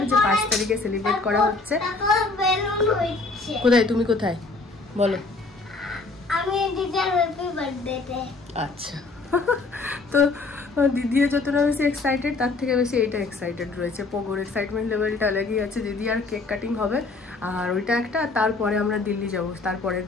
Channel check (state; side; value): quieter; right; 3.7 dB